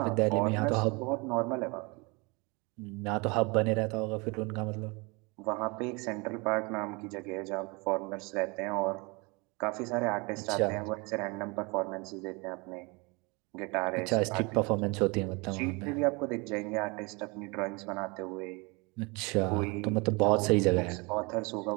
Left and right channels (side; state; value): left; quieter; 28.2 dB